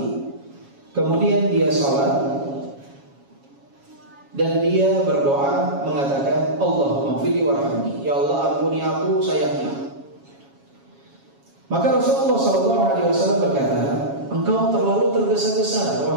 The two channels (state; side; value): late; left; 7.3 ms